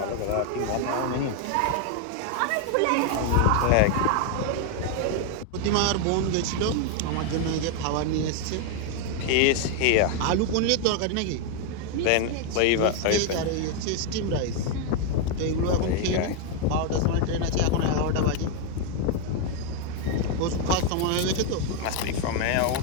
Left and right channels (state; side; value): different; both; correlation 0.01